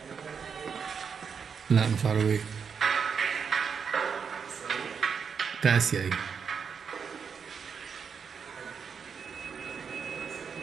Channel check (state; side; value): quieter; left; 6.4 dB